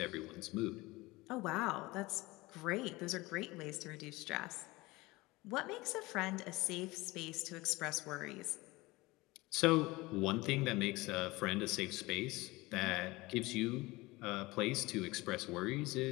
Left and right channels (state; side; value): quieter; right; 21.4 dB